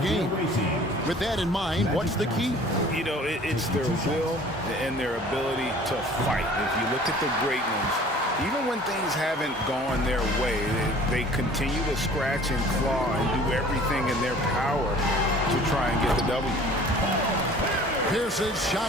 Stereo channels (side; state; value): both; normal; correlation 0.49